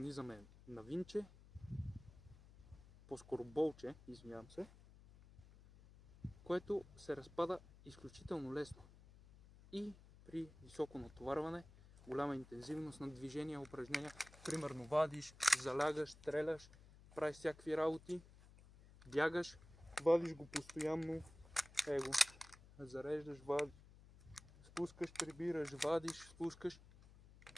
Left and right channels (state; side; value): noise; left; hum, 21 dB below the sound